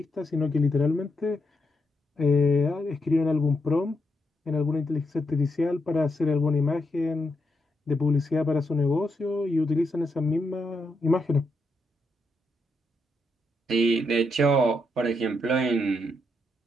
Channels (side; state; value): both; normal; correlation 0.81